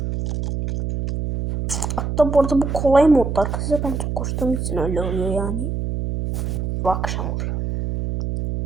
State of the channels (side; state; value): right; noise; hum, 3 dB below the sound